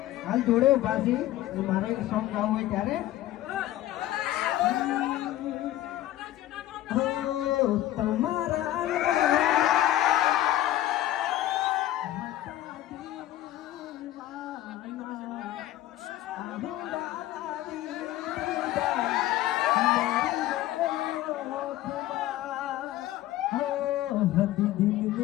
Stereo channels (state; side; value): quieter; right; 14.3 dB